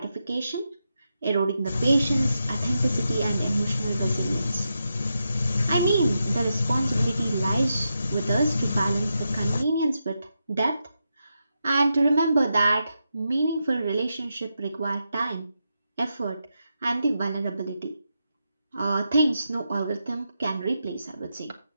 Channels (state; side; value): inverted; both; correlation -0.86